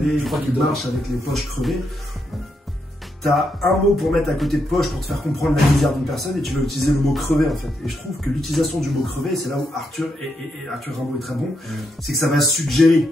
je crois qu'il marche avec les poches crevées, t'as un mot pour mettre à côté de poche pour te faire comprendre la misère d'une personne et tu vas utiliser le mot crevé en fait. Et je trouve que l'utilisation du mot crevé, c'est là où Arthur Arthur Rimbaud est très bon, c'est que ça va suggérer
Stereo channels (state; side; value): normal; both; correlation 0.81